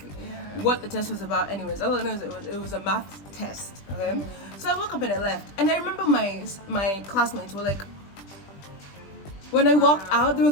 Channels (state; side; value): late; right; 20 ms